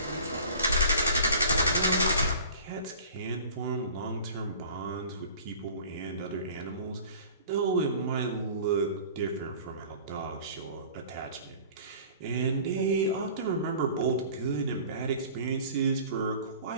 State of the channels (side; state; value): both; inverted; correlation -0.44